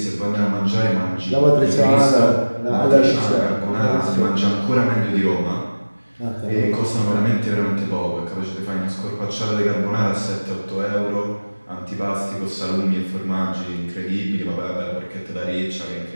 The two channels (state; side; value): inverted; both; correlation -1.00